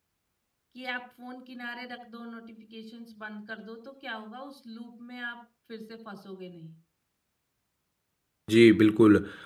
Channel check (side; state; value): both; identical; correlation 1.00